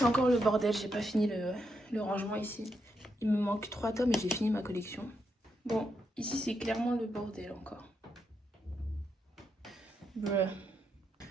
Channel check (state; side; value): normal; both; correlation 0.81